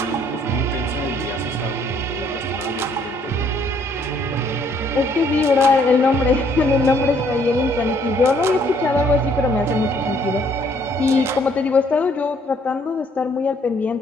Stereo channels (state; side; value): normal; both; correlation 0.65